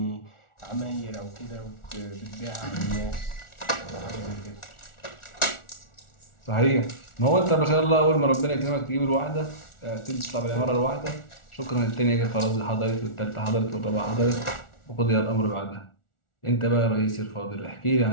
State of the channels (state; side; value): late; right; 1.4 ms